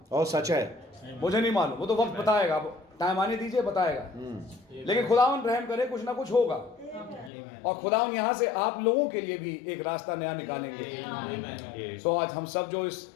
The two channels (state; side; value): drops out; right; at 7.3 s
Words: और सच है, मुझे नहीं मालूम, वो तो वक्त बताएगा, टाइम आने दीजिए बताएगा। लेकिन खुदावन रहम करे कुछ ना कुछ होगा, और खुदावन यहाँ से आप लोगों के लिए भी एक रास्ता नया निकालेंगे। सो आज हम सब जो इस